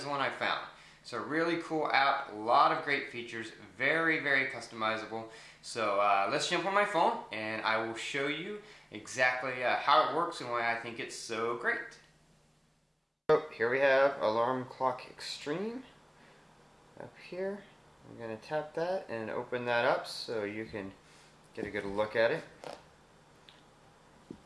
the one I found. It's a really cool app, a lot of great features, very, very customizable. So let's jump on my phone and I will show you exactly how it works and why I think it's so great. So here we have Alarm Clock Xtreme up here. I'm going to tap that and open that up so you can get a good look at it.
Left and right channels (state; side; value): identical; both; correlation 1.00